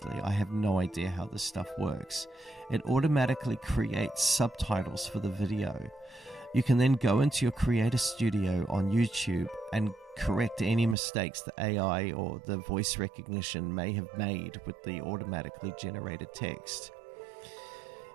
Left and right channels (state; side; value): drops out; left; at 11.0 s